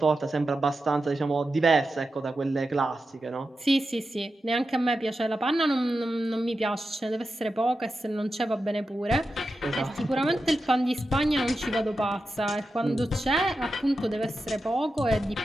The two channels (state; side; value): normal; both; correlation 0.90